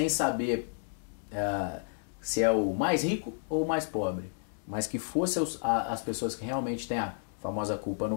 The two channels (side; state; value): right; silent; digital silence